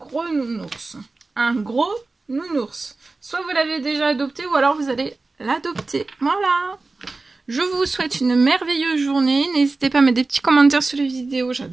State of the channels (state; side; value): quieter; left; 3.5 dB